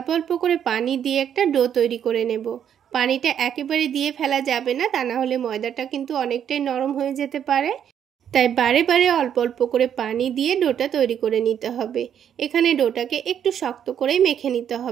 অল্প করে পানি দিয়ে একটা ডো তৈরি করে নেব। পানিটা একেবারে দিয়ে ফেলা যাবে না, তা না হলে ময়দাটা কিন্তু অনেকটাই নরম হয়ে যেতে পারে। তাই বারে বারে অল্প অল্প করে পানি দিয়ে ডোটা তৈরি করে নিতে হবে। এখানে ডোটাকে একটু শক্ত করেই মেখে নিতে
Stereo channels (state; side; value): quieter; left; 9.1 dB